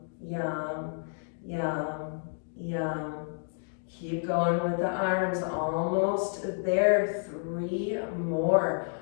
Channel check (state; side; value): silent; right; digital silence